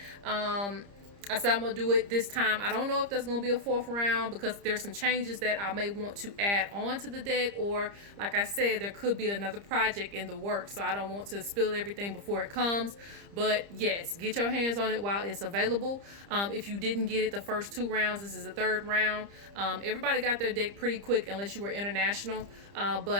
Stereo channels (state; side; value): late; left; 30 ms